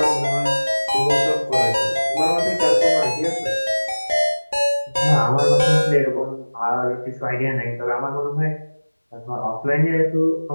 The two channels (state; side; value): inverted; both; correlation -1.00